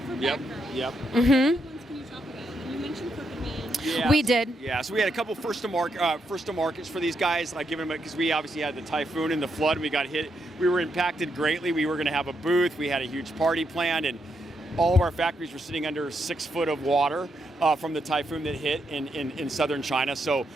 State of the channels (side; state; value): both; normal; correlation 0.80